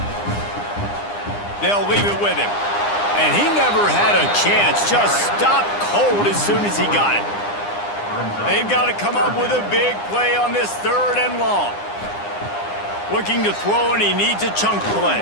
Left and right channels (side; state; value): right; late; 9.8 ms